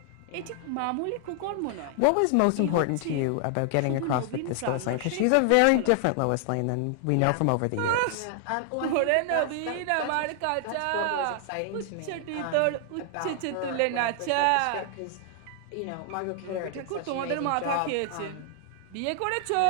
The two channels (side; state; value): both; different; correlation 0.00